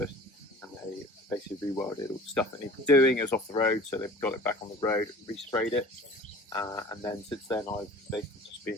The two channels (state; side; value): normal; both; correlation 0.44